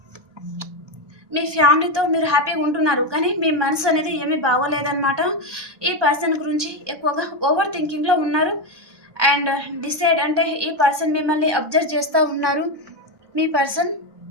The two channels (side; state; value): left; late; 1.2 ms